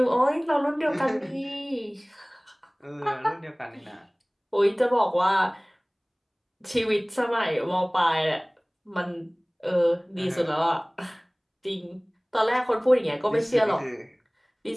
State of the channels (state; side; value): identical; both; correlation 1.00